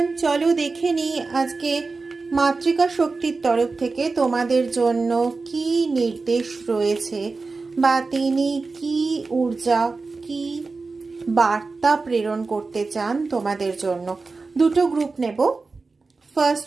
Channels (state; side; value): quieter; left; 4.0 dB